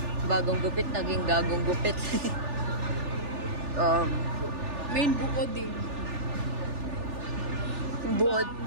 Bagong gupit, naging gagong gupit. Main buoding. Buod.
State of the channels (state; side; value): late; left; 3.4 ms